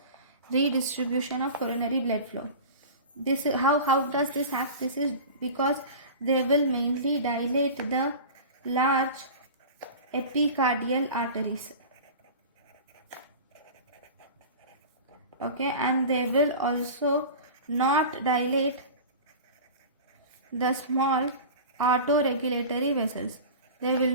redistribution of coronary blood flow. This is how does this act? This is because they will mainly dilate the large epicardial arteries. Okay, and they will also not dilate the small autoregulatory vessels. They will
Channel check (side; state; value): both; inverted; correlation -0.34